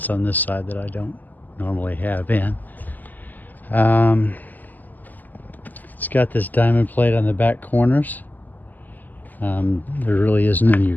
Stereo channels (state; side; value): late; right; 0.084 ms